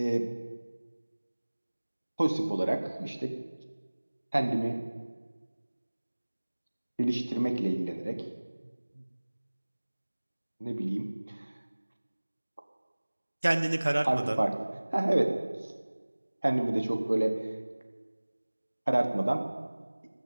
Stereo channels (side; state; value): both; inverted; correlation -1.00